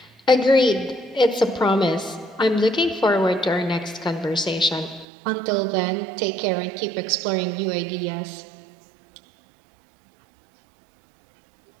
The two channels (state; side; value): drops out; left; at 5.1 s